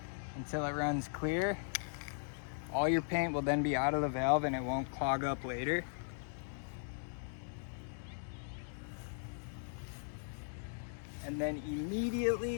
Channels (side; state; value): right; silent; digital silence